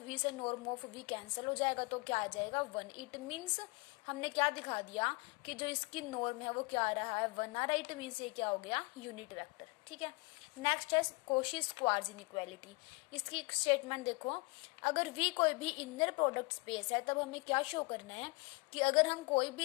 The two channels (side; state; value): right; quieter; 27.5 dB